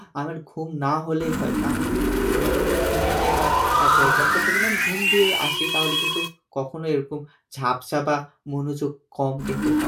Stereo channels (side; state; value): both; identical; correlation 1.00